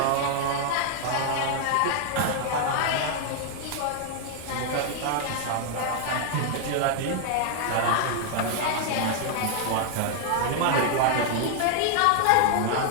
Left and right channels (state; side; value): different; both; correlation 0.00